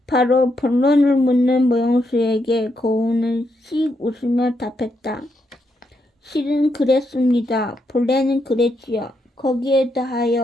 바로 본론을 묻는 모용수에게 고운은 씩 웃으며 답했다. 실은 그랬습니다. 본래는 그랬지요. 거기에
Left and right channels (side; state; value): both; normal; correlation 0.80